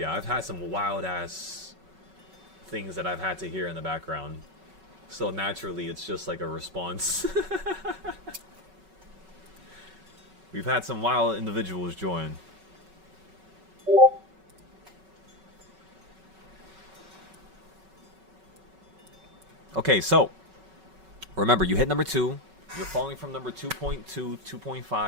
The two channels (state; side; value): late; left; 5.3 ms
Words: I've had some wild ass things that I've had to hear in the background. So naturally, it's just like a response. We've had some wild individuals join. Okay, so remember, you hit number 2. You're falling from number 2.2,